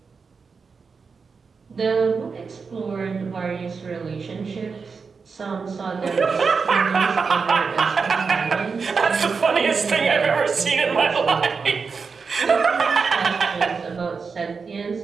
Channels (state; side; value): quieter; left; 5.1 dB